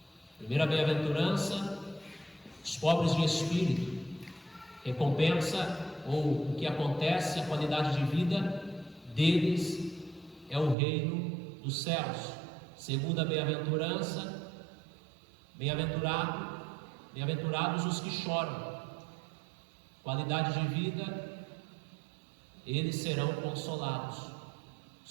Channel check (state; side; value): drops out; left; at 10.8 s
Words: Primeira bem-aventurança, os pobres de espírito. Recompensa, ou o que acontece, a qualidade de vida deles é o reino dos céus. Segunda bem-aventurança, bem-aventurados os que choram. Qualidade de vida, eles serão consolados. O